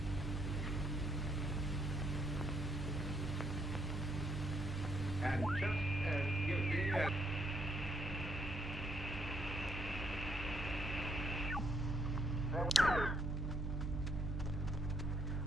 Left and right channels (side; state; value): both; normal; correlation 0.72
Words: And just as guilty as...